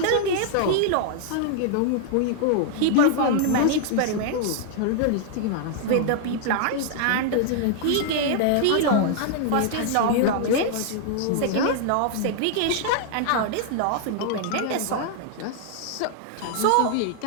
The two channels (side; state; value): both; different; correlation -0.01